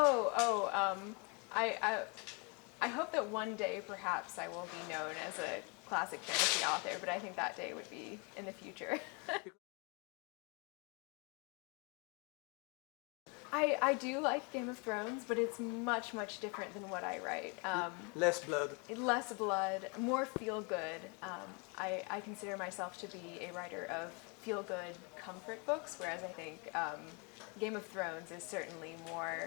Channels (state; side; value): quieter; right; 33.0 dB